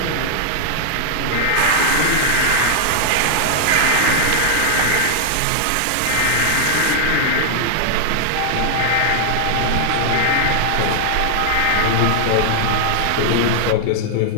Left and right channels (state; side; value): different; both; correlation -0.01